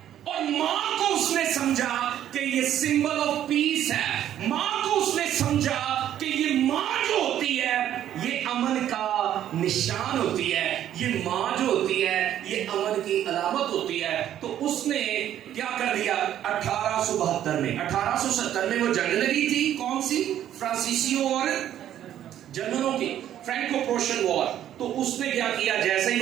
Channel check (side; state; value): left; quieter; 11.2 dB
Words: और मां को उसने समझा कि ये सिंबल ऑफ पीस है। मां को उसने समझा कि ये मां जो होती है ये अमन का निशान होती है, ये मां जो होती है ये अमन की अलामत होती है। तो उसने क्या कर दिया, 1872 में 1870 में वो जंग लगी थी, कौन सी, फ्रांसीसियों और जर्मनों की, फ्रैंको प्रोशन वॉर। तो उसने क्या किया, जैसे ही